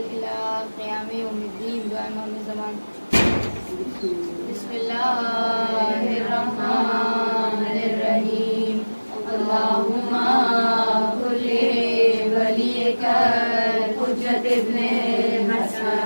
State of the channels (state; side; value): inverted; both; correlation -1.00